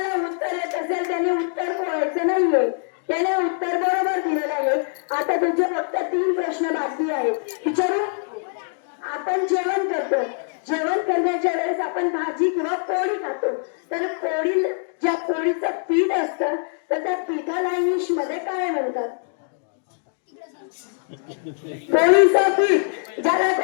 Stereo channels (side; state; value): right; silent; 61 dB below the other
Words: उत्तर येत असेल त्याने उत्तर बोलायचं नाहीये, त्याने उत्तर बरोबर दिलेलं आहे. आता तुझे फक्त 3 प्रश्न बाकी आहेत. विचारू? आपण जेवण करतो, जेवण करण्याच्या वेळेस आपण भाजी किंवा पोळी खातो, तर पोळी ज्या पोळीचं पीठ असतं तर त्या पीठाला इंग्लिश मध्ये काय म्हणतात? पोळीचं पीठ. ज्याला